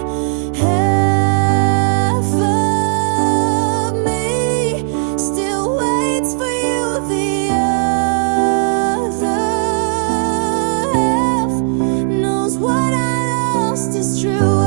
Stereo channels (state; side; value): silent; left; 56 dB below the other